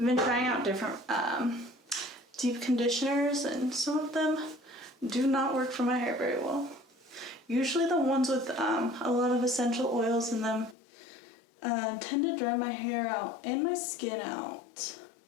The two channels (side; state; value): right; drops out; at 10.8 s